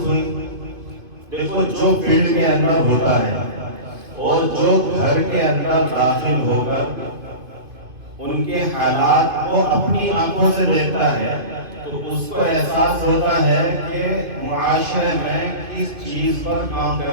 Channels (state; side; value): late; left; 2.5 ms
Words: ہوئی؟ دیکھو، جو فیلڈ کے اندر ہوتا ہے اور جو گھر کے اندر داخل ہو کر ان کے حالات کو اپنی آنکھوں سے دیکھتا ہے تو اس کو احساس ہوتا ہے کہ معاشرے میں کس چیز پر کام